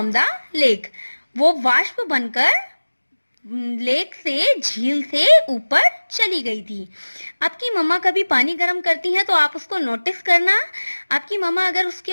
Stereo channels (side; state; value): both; inverted; correlation -1.00